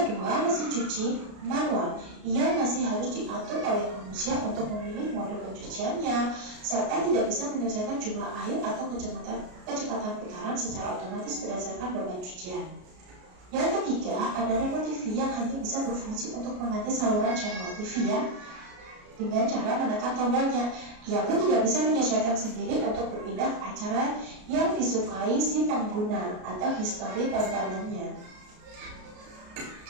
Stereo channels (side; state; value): left; late; 33 ms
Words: kedua, mesin cuci manual. Ia masih harus diatur oleh manusia untuk memilih mode pencuciannya, serta tidak bisa menyelesaikan jumlah air atau kecepatan putaran secara otomatis berdasarkan beban cucian. Yang ketiga, ada remote TV yang hanya bisa berfungsi untuk mengganti saluran channel TV dengan cara menekan tombolnya. Ia pun tidak bisa menyesuaikan sendiri untuk berpindah ke acara yang disukai si pengguna atau histori tontonannya.